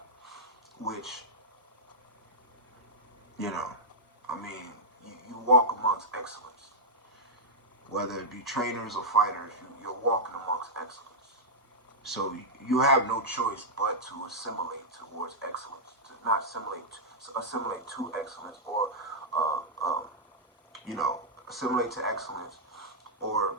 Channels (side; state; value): both; normal; correlation -0.06